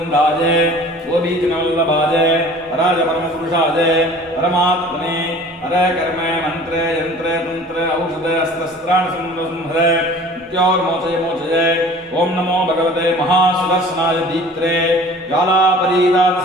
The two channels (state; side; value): normal; both; correlation 0.46